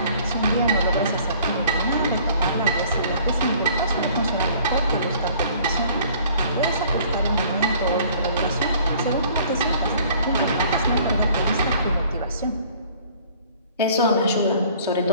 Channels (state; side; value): inverted; both; correlation -0.54